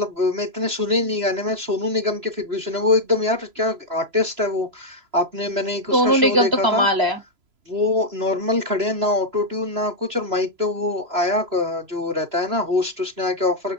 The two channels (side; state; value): left; late; 3.0 ms